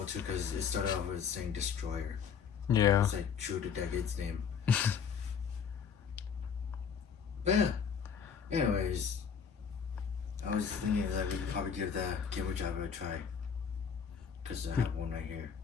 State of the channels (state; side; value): quieter; right; 6.9 dB